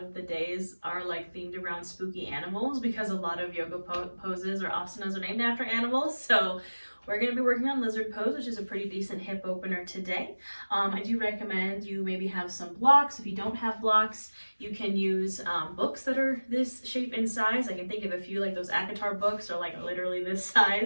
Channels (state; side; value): inverted; both; correlation -1.00